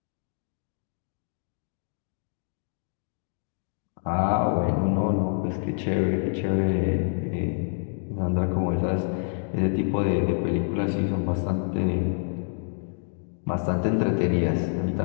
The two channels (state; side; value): silent; right; digital silence